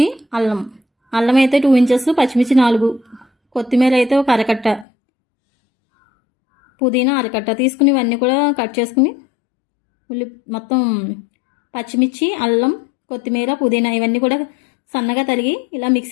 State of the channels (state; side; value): drops out; right; at 4.9 s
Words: అల్లం అయితే 2 ఇంచెస్, పచ్చిమిర్చి 4, కొత్తిమీర అయితే ఒక అరకట్ట, పుదీనా అరకట్ట తీసుకుని ఇవన్నీ కూడా కట్ చేసుకుని మొత్తం పచ్చిమిర్చి, అల్లం, కొత్తిమీర, పుదీనా ఇవన్నీ కూడా సన్నగా తరిగి ఇలా